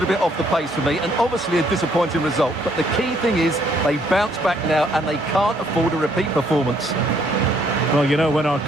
bit off the pace for me, and obviously a disappointing result. But the key thing is they bounce back now and they can't afford a repeat performance. Well, you know, when our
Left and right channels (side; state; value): both; normal; correlation 0.67